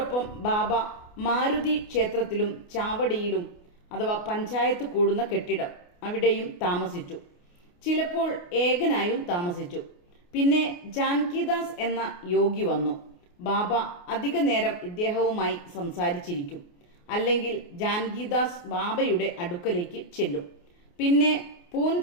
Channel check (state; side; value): late; right; 28 ms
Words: ബാബ മാരുതി ക്ഷേത്രത്തിലും ചാവടിയിലും അഥവാ പഞ്ചായത്ത് കൂടുന്ന കെട്ടിടം അവിടെയും താമസിച്ചു. ചിലപ്പോൾ ഏകനായും താമസിച്ചു. പിന്നെ ജാൻകിദാസ് എന്ന യോഗി വന്നു. ബാബ അധിക നേരം ഇദ്ദേഹവുമായി സംസാരിച്ചിരിക്കും. അല്ലെങ്കിൽ ജാൻകിദാസ് ബാബയുടെ അടുക്കലേക്ക് ചെല്ലും. പിന്നെ